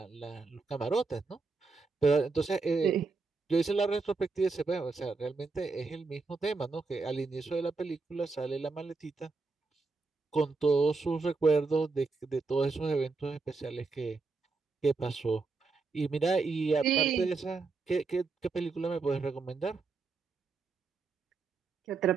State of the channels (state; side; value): quieter; left; 4.1 dB